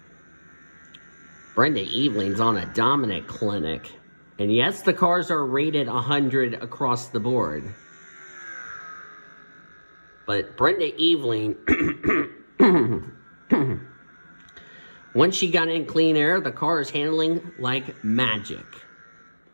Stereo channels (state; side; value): inverted; both; correlation -1.00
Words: Brenda Evelyn's on a dominant clinic. And yes, the cars are rated 100 across the board. But Brenda Evelyn, once she got in clean air, the car is handling like magic.